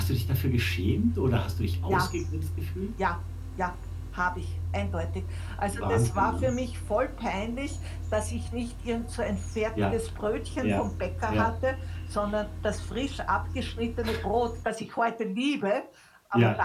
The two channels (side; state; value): both; identical; correlation 1.00